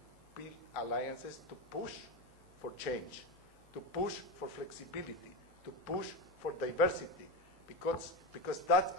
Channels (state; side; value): normal; both; correlation 0.17